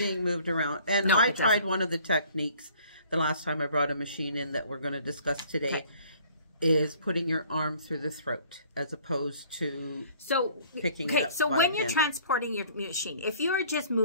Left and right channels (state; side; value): inverted; both; correlation -0.55